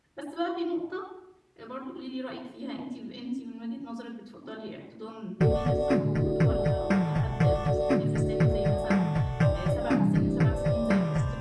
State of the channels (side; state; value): both; identical; correlation 1.00